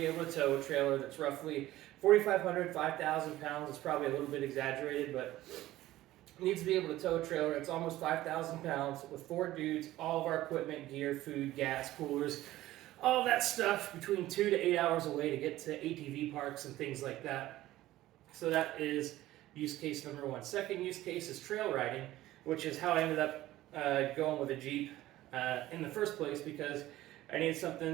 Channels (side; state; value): left; quieter; 15.6 dB